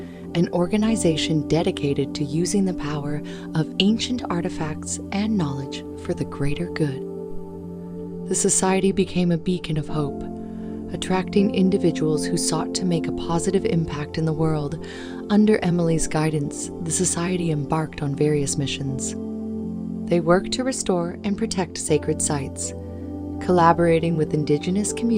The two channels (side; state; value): both; identical; correlation 1.00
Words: an organization dedicated to using the power of ancient artifacts and knowledge for the greater good. The society became a beacon of hope, attracting individuals who sought to make a positive impact in the world. Under Emily's guidance, the society embarked on various missions. They worked to restore and protect sacred sites, collaborating with indigenous